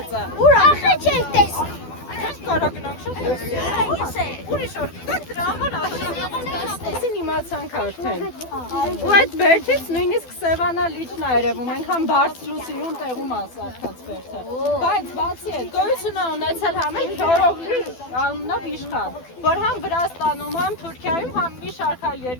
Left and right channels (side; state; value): right; late; 12 ms